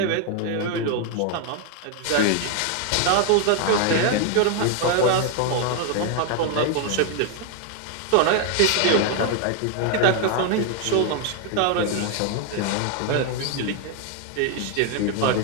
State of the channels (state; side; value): different; both; correlation 0.01